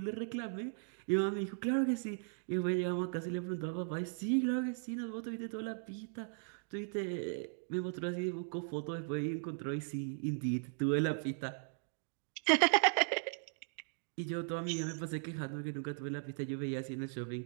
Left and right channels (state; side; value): silent; left; digital silence